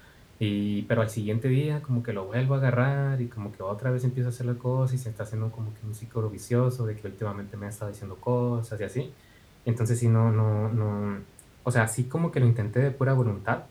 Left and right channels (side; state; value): both; identical; correlation 1.00